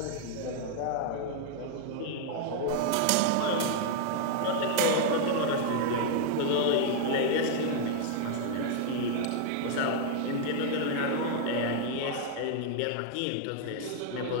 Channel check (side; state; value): both; different; correlation 0.00